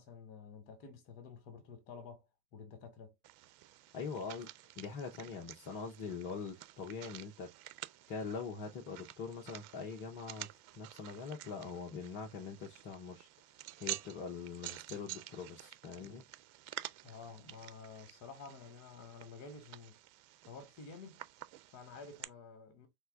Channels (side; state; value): right; late; 2.7 ms